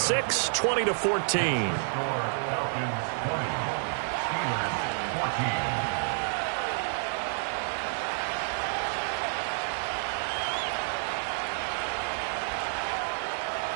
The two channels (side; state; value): left; silent; 58 dB below the other